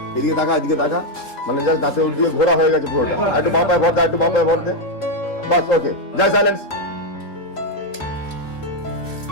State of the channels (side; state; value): right; late; 3.5 ms